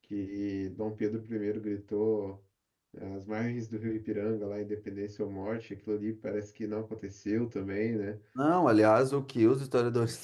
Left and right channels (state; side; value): identical; both; correlation 1.00